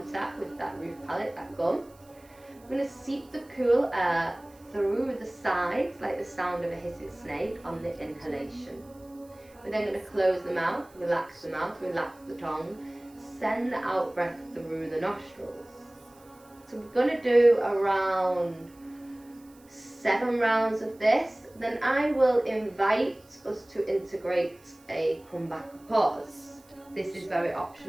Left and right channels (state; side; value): noise; right; hiss, 28 dB below the sound